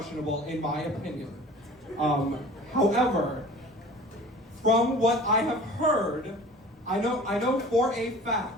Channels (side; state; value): both; normal; correlation 0.43